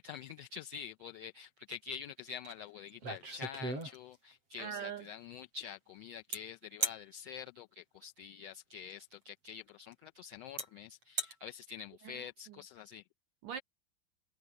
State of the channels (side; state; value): left; late; 7.6 ms